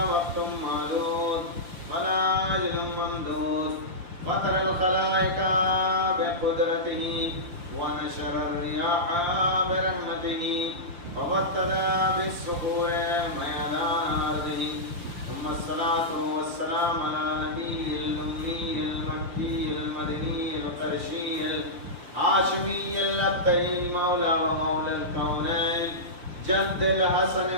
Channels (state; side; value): late; left; 5.7 ms